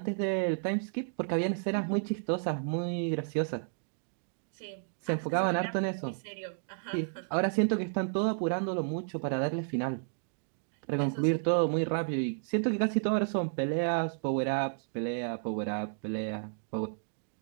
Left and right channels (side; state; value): left; silent; digital silence